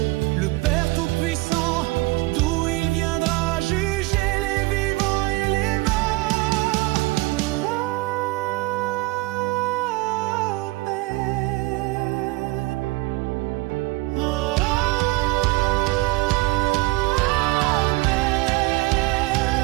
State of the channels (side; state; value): left; quieter; 22.2 dB